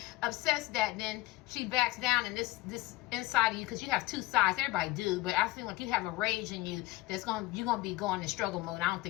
upsets that, then she backs down, and this inside of you, because you have two sides. Everybody do, but I feel like you have a rage in you you're gonna be going in struggle mode. I don't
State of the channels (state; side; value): quieter; right; 18.9 dB